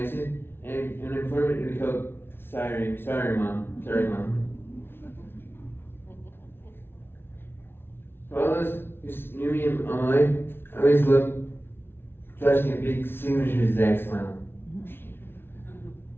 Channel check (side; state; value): right; late; 0.11 ms